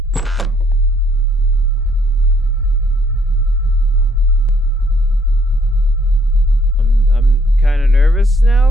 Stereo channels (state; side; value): normal; both; correlation 0.66